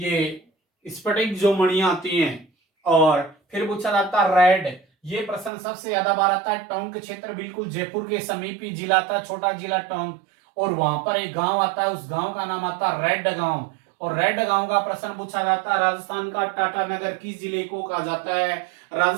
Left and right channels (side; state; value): left; drops out; at 5.5 s